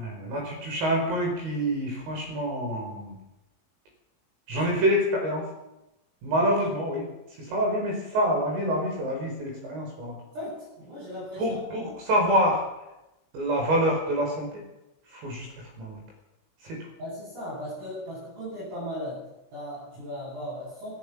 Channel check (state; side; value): late; left; 19 ms